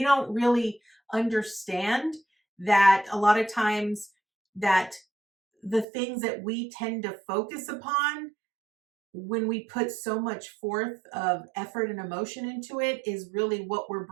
don't really understand that a lot of times that the things that we tend to focus upon when we put so much forth of effort and emotion into it is really what we're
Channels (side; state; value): left; drops out; at 5.9 s